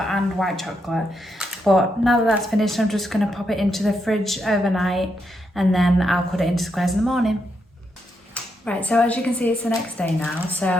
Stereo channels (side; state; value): both; normal; correlation 0.81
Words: and white chocolate. But now that that's finished, I'm just going to pop it into the fridge overnight and then I'll cut it into squares in the morning. Right, so as you can see, it's the next day now.